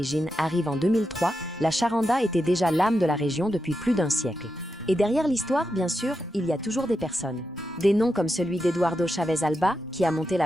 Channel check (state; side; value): normal; both; correlation 0.87